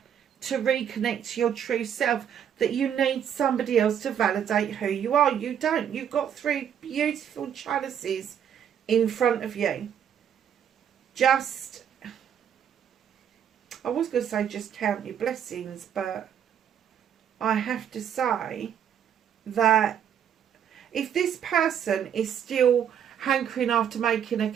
to reconnect to your true self that you need somebody else to validate who you are? You don't. You've got 3 beautiful chalices in front of you. Just, I was going to say just count your blessings, but I have to say that if this person is still hankering after making a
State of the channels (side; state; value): left; quieter; 8.9 dB